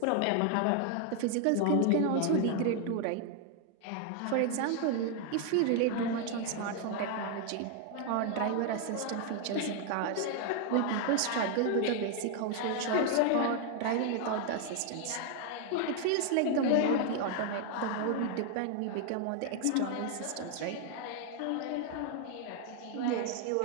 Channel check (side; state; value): both; different; correlation 0.00